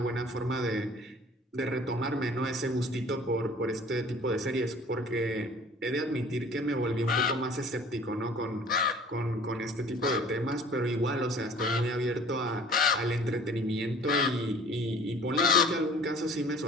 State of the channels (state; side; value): normal; both; correlation 0.50